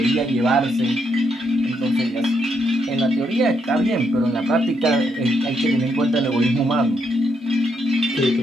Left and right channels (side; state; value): both; normal; correlation 0.77